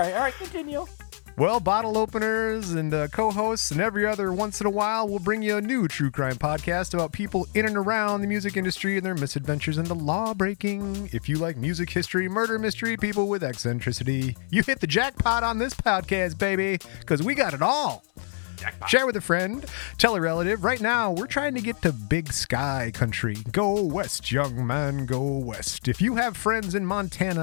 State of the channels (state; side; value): silent; right; 61 dB below the other